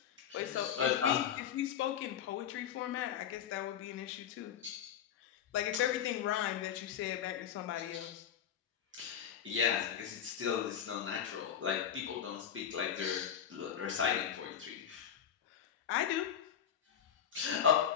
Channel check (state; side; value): quieter; right; 9.0 dB